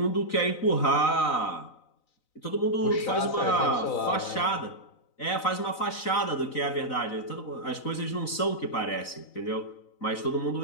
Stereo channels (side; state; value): right; late; 4.0 ms